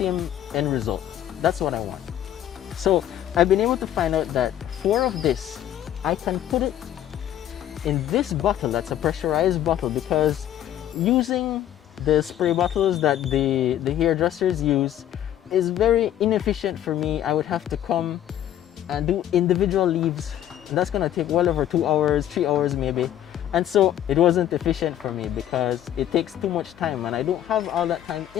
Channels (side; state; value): right; quieter; 11.4 dB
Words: end result. That's what I want. So I've been able to find out that 4 of this, I can put it in this bottle. That's a pressurized bottle, because using the spray bottles that the hairdressers use is very inefficient for me. I would have to come and do individual leaves, and that's gonna take well over 2 hours, 3 hours maybe. And so it wasn't efficient for me because it takes too much time and I don't have all that time